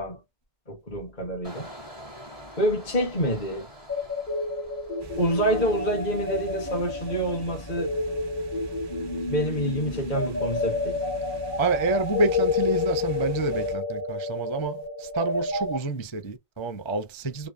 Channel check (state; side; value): late; right; 1.3 ms